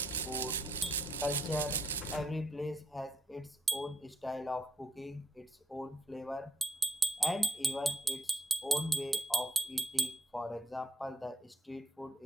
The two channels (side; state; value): both; normal; correlation 0.76